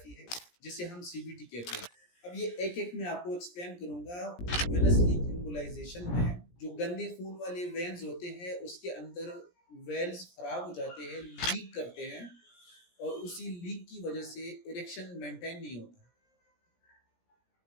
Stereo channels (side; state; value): right; late; 17 ms